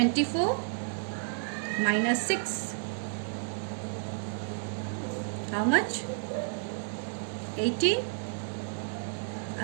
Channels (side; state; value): left; silent; digital silence